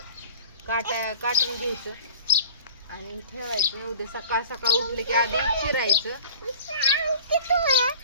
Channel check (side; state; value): both; inverted; correlation -0.42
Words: काटून घ्यायचं आणि ठेवायचं. उद्या सकाळ सकाळ उठले की आधी चिरायचं.